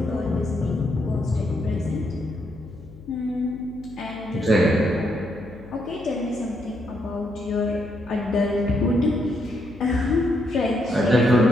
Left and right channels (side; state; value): left; noise; hum, 19 dB below the sound